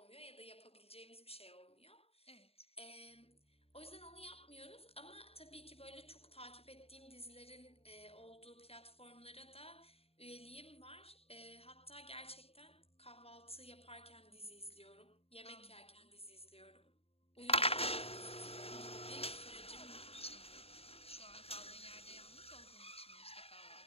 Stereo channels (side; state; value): right; late; 0.29 ms